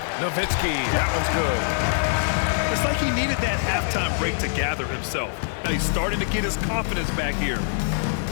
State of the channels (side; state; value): right; silent; digital silence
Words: Nowitzki, that one's good. It's like he needed that halftime break to gather himself. Now he's starting to get his confidence back here.